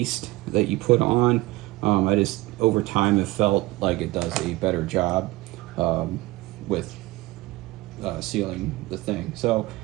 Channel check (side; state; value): left; quieter; 19.7 dB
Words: that you put on. I just, over time, have felt like it does a better job with sealing the thing. So